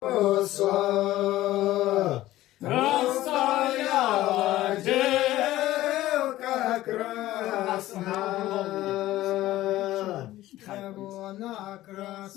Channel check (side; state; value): right; quieter; 15.5 dB